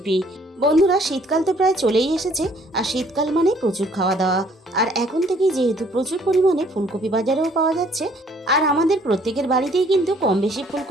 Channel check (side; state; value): both; normal; correlation 0.61